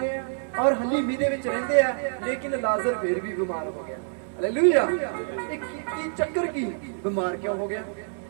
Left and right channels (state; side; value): silent; left; digital silence